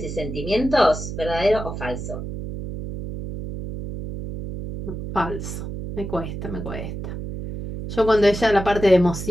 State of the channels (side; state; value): right; noise; hum, 7 dB below the sound